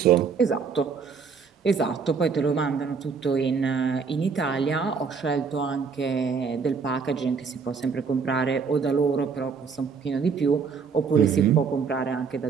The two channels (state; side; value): quieter; left; 5.5 dB